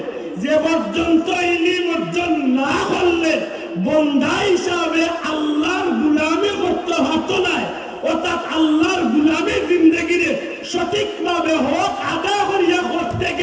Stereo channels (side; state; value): both; identical; correlation 1.00